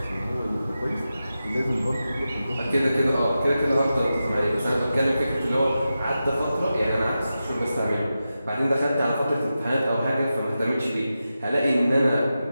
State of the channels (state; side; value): inverted; both; correlation -0.91